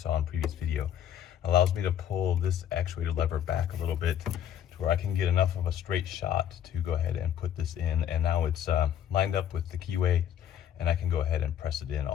in previous video. Allows me to pull this actuator lever back a little bit to where I can get enough of a straight shot to go ahead and put this in. And now it's lined up with the keyway, and I can go ahead and press it in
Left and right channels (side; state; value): right; quieter; 10.1 dB